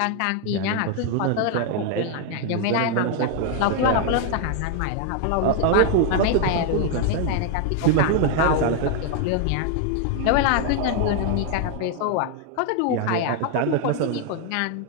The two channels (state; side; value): different; both; correlation 0.01